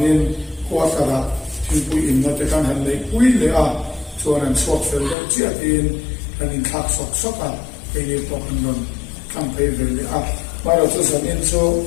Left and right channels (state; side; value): drops out; right; at 5.2 s